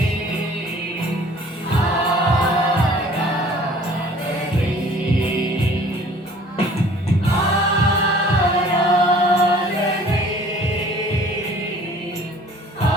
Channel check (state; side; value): normal; both; correlation 0.51